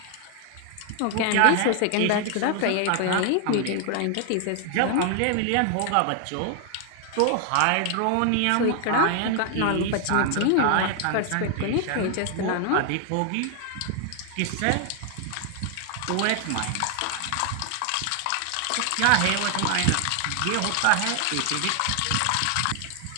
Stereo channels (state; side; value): different; both; correlation 0.00